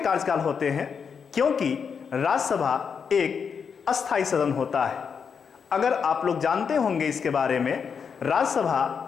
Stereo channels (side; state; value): right; quieter; 6.4 dB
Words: होते हैं, क्योंकि राज्यसभा एक अस्थायी सदन होता है। अगर आप लोग जानते होंगे इसके बारे में,